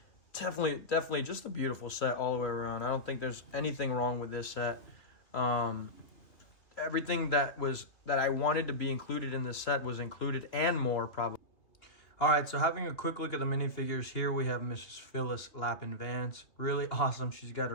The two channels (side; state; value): right; late; 3.0 ms